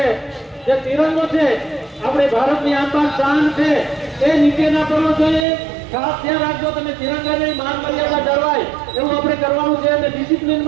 જે તિરંગો છે આપણે ભારતની આન શાન છે એ નીચે ના કરવો જોઈએ। ખાસ ધ્યાન રાખજો તમે તિરંગાની માન મર્યાદા જળવાય એવું આપણે કરવાનું છે અને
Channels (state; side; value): drops out; left; at 5.5 s